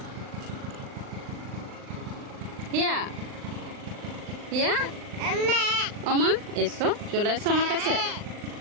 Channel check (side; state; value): left; late; 39 ms